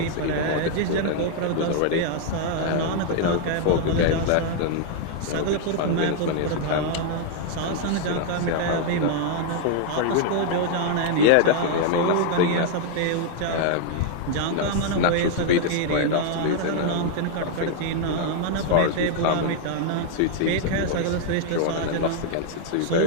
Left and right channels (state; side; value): different; both; correlation 0.00